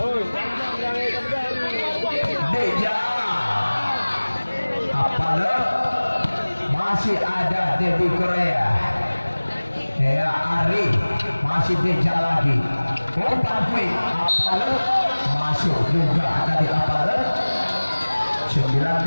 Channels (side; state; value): both; inverted; correlation -1.00